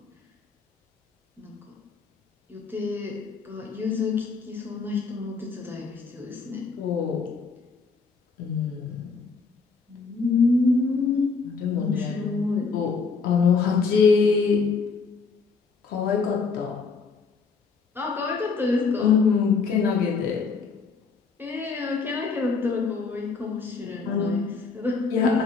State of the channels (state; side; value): quieter; right; 4.8 dB